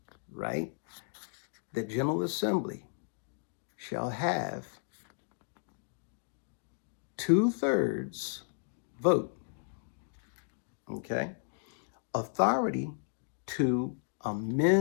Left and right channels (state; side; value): silent; right; digital silence